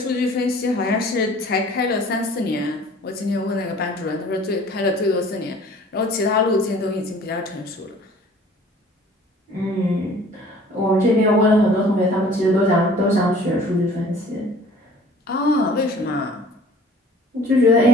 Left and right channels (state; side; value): normal; both; correlation 0.50